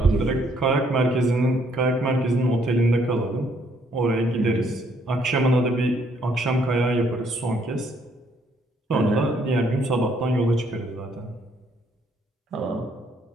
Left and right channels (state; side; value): normal; both; correlation 0.68